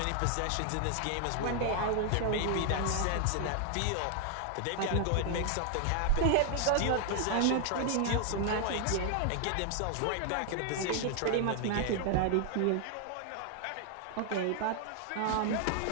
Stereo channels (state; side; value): different; both; correlation 0.00